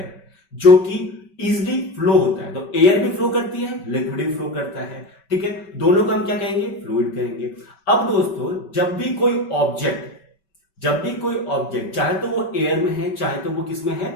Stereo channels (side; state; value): right; late; 5.2 ms